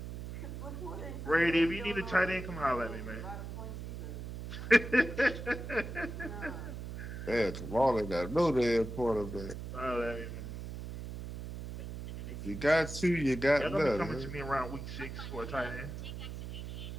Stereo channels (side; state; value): right; noise; hum, 8 dB below the sound